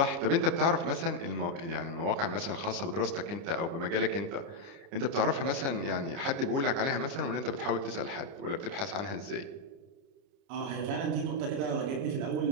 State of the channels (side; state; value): left; late; 29 ms